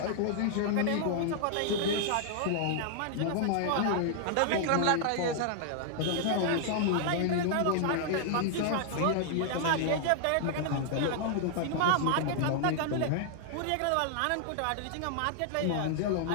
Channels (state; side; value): different; both; correlation 0.00